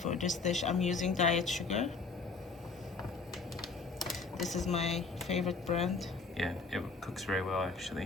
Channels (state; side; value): quieter; right; 4.3 dB